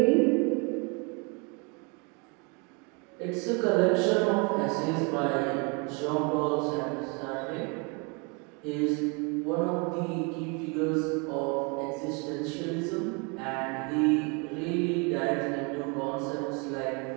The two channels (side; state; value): left; quieter; 32.4 dB